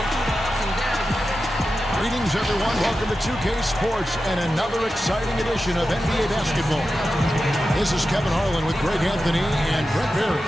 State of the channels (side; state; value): both; normal; correlation 0.92